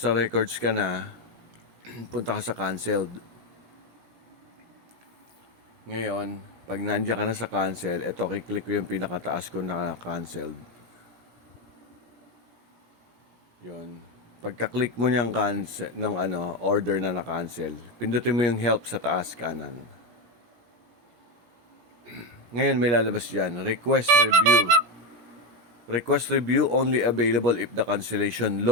records ka na, punta ka sa canceled. Ngayon, pag nandiyan ka na sa cancel, eto, kiklik ko yung pinakataas ko na canceled. Yun. Pagka-click mo niyang cancel ng order na na-cancel, pindutin mo yung help sa taas kanan. Ngayon may lalabas diyan, request review. Request review only available if the cancellation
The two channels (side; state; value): left; late; 17 ms